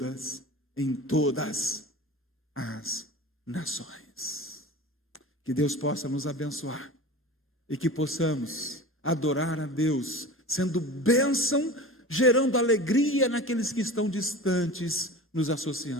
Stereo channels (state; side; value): normal; both; correlation 0.34